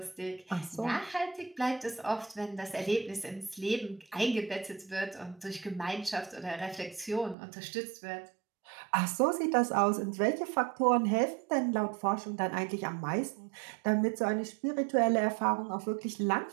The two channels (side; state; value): left; drops out; at 7.4 s